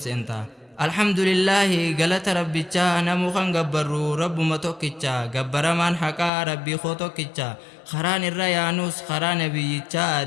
الحمد لله قالت ربي تشا نمو خان غبرو رب متوكيتشا غبرمان حقا ربي خوتوكيتشا خران الريانوس خران بيتشا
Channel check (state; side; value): drops out; right; at 6.3 s